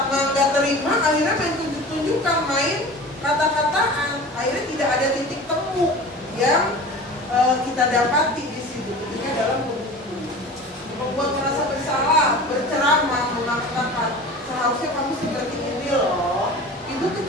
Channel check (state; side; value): normal; both; correlation 0.37